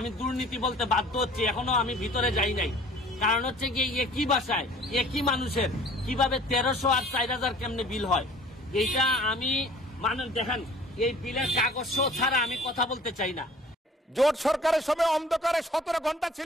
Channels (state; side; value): normal; both; correlation 0.50